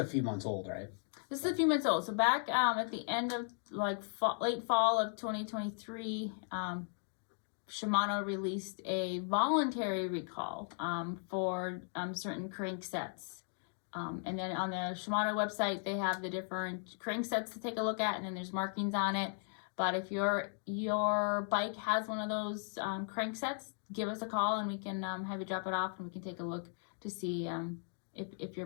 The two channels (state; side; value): silent; right; 53 dB below the other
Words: few months old, right? This is a few months old. So back at the end of like late fall of 2023, Shimano released a voluntary recall for certain crank sets. And then on the Shimano website, they have the different crank sets to take a look at, and then there's markings on it. But if your bike has one of those crank sets, give us a call and we can have you drop it off and we can take a look to see if your